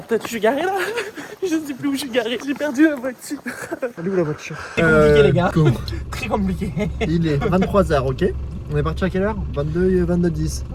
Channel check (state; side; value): identical; both; correlation 1.00